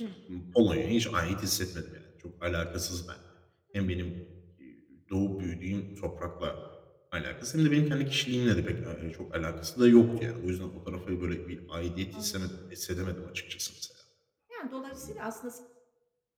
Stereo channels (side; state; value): both; identical; correlation 1.00